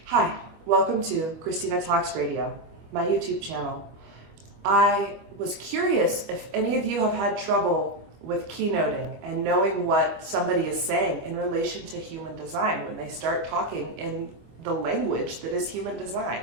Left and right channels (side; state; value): left; late; 25 ms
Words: Hi, welcome to Christina Talks Radio, my YouTube channel. I was curious if any of you have had trouble with keynoting and knowing what somebody is saying in relation to human design when they start talking in the language that is human design.